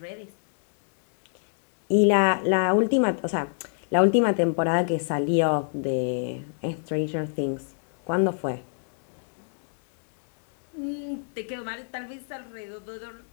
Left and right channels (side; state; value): right; silent; digital silence